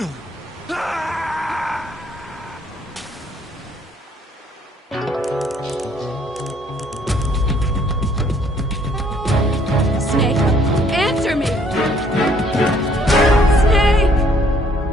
answer me! Snake!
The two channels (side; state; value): both; normal; correlation 0.63